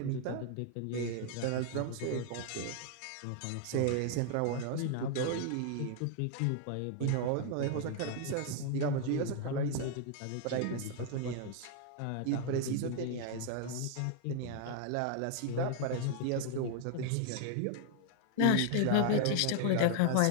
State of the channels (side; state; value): both; different; correlation 0.00